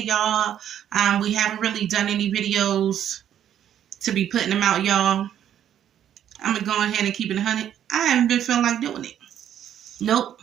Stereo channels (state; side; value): quieter; left; 10.3 dB